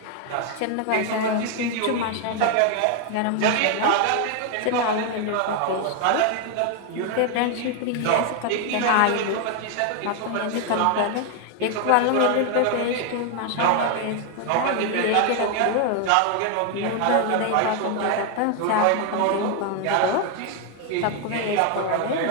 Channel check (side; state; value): both; different; correlation 0.01